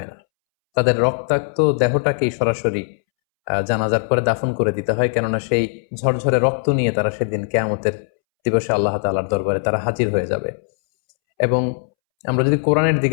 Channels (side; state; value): right; silent; 66 dB below the other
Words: না। তাদের রক্তাক্ত দেহটাকেই সরাসরি জানাজার পরে দাফন করে দিতে হয়, কেননা সেই ঝরঝরে রক্ত নিয়ে তারা সেদিন কিয়ামতের দিবসে আল্লাহ তাআলার দরবারে তারা হাজির হয়ে যাবে। এবং আমরা যদি কোরআনের